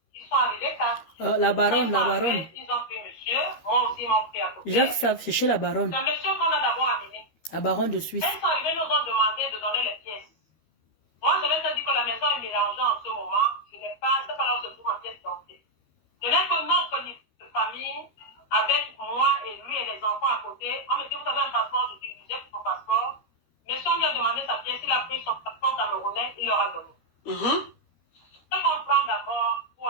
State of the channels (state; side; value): late; right; 13 ms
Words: 4. La baronne. Ils ont pris monsieur, moi aussi, ils m'ont pris à côté. Jacques savent, c'est chez la baronne. C'est monsieur qu'on a d'abord amené. La baronne de Suisse. Ils sont arrivés, nous ont demandé de donner les pièces. Moi, je leur ai dit que la maison est mélangée en ce moment. Je n'ai pas, c'est pas là où se trouve ma pièce d'entrée. Je n'ai que notre livre de famille avec moi et lui et les enfants à côté. On me dit, vous avez un passeport? Je dis, j'ai pris mon passeport. Monsieur, on lui a demandé sa pièce. Il a pris son passeport camerounais. Il il leur a donné. Je comprends d'abord pour